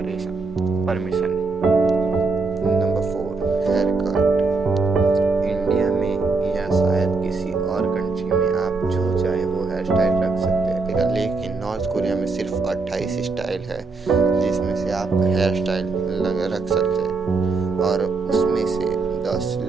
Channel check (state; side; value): quieter; left; 4.0 dB